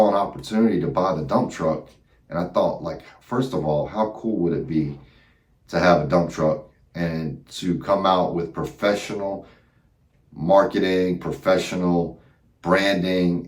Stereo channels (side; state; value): both; identical; correlation 1.00